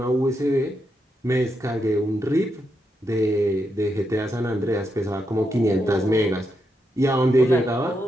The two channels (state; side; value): normal; both; correlation 0.83